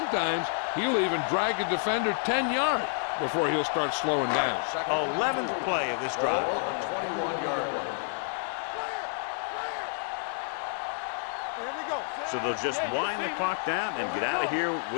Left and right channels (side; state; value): right; silent; 58 dB below the other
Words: he'll even drag a defender 10 yards before he'll start slowing down. 11th play of this drive. Ball on the 21-yard line. Clear. Here we go. So they'll just wind the clock down and get out of here